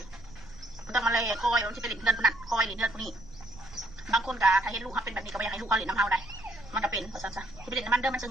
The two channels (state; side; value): noise; right; rumble, 20 dB below the sound